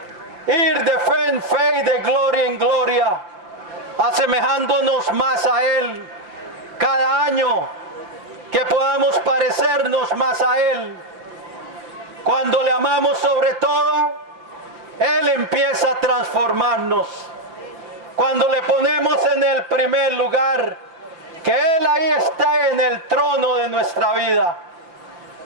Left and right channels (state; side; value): late; left; 5.8 ms